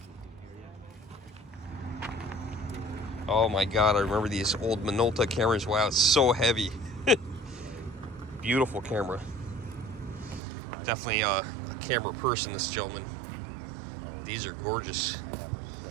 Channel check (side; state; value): left; drops out; at 10.4 s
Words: Oh my God, I remember these old Minolta cameras. Wow, it's so heavy. Beautiful camera. Definitely a camera person, this gentleman. These are gorgeous.